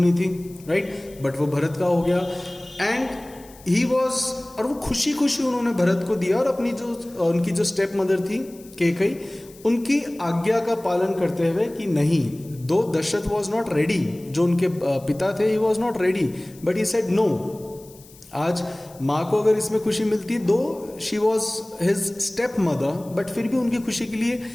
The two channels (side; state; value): left; noise; hiss, 23 dB below the sound